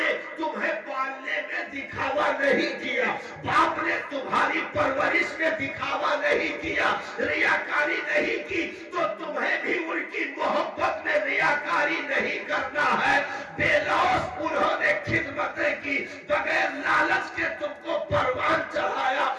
تمہیں پالنے میں دکھاوا نہیں کیا، باپ نے تمہاری پرورش میں دکھاوا نہیں کیا، ریاکاری نہیں کی، تو تمہیں بھی ان کی محبت میں ریاکاری نہیں کرنا ہے۔ بے لوث انہوں نے خدمتیں کی، بغیر لالچ کے تم کو پروان چڑھایا،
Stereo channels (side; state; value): both; identical; correlation 1.00